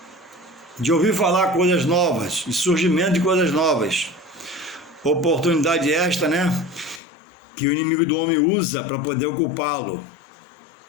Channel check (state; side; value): drops out; right; at 7.0 s